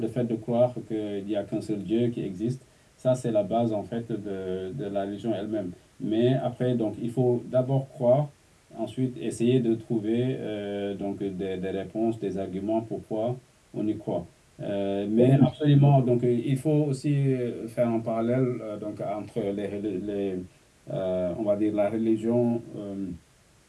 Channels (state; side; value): identical; both; correlation 1.00